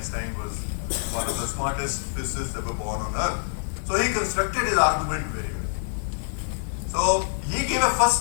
was one of the smartest physicists ever born on Earth. So he constructed his argument very well. So he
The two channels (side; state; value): right; silent; digital silence